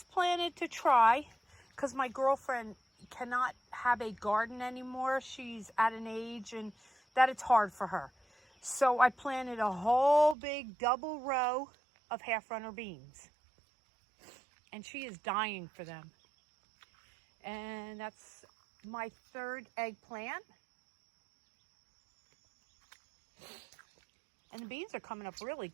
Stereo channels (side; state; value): left; drops out; at 10.4 s